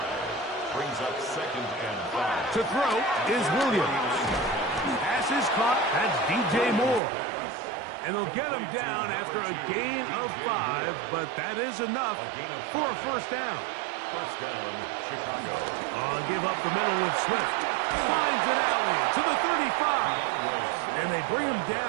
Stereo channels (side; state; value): left; drops out; at 7.0 s